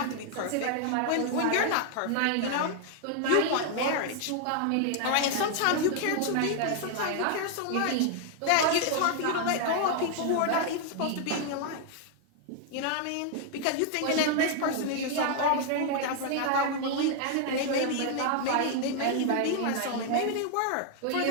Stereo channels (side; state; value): both; different; correlation 0.00